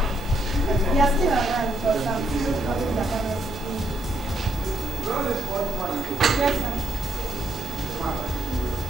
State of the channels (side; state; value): right; noise; hiss, 23 dB below the sound